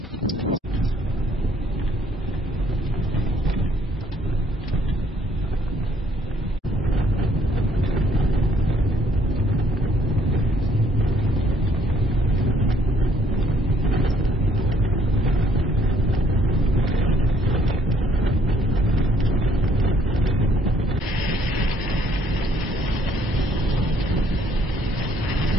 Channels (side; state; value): both; normal; correlation 0.64